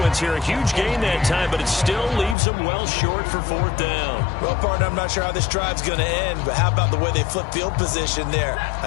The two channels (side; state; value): right; drops out; at 2.4 s